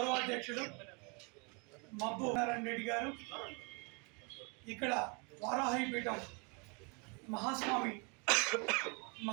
మబ్బు నారాయణ రెడ్డి గారు ఇక్కడ వారాహి పీఠం మహాస్వామి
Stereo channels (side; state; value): left; quieter; 32.7 dB